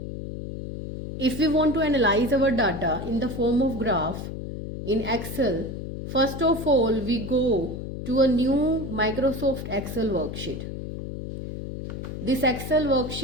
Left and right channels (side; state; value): left; noise; hum, 7 dB below the sound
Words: If we want to analyze our data in the form of graph in Excel, first of all we go to a new Microsoft Excel worksheet. This Excel